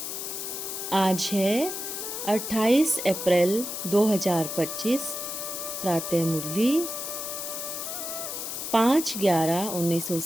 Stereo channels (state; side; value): noise; left; hiss, 5 dB below the sound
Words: आज है 28 अप्रैल 2025। प्रातः मुरली